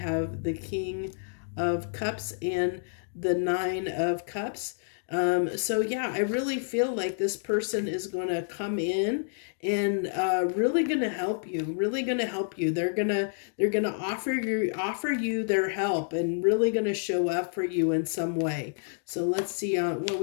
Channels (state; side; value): silent; right; digital silence